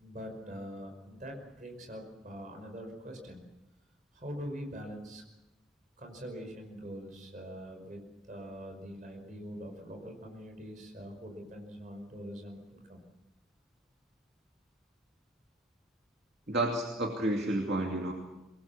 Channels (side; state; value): both; normal; correlation 0.51